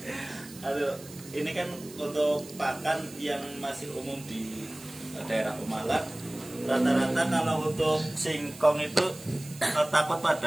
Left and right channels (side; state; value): right; noise; hiss, 18 dB below the sound